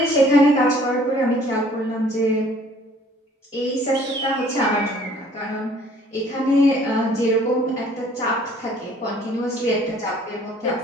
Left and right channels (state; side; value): normal; both; correlation 0.56